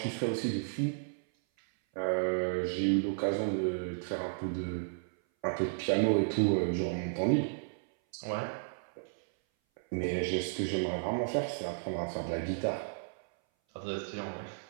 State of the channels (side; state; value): left; silent; 56 dB below the other